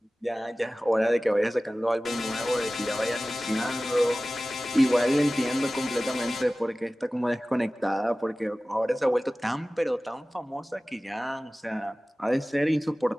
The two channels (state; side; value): normal; both; correlation 0.97